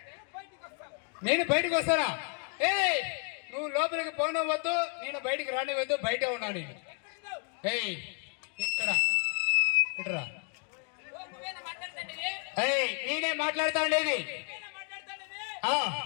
నేను బయటకు వస్తానా? ఏ నువ్వు లోపలికి పోనవద్దు, నేను బయటికి రానివద్దు, బయటే ఉన్నా నేను. ఏయ్ ఇక్కడ ఇట్రా. ఏయ్ నేనే మాట్లాడుతా ఉండేది.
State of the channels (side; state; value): right; quieter; 40.0 dB